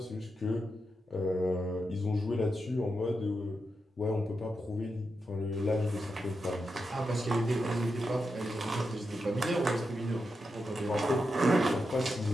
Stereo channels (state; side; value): normal; both; correlation 0.87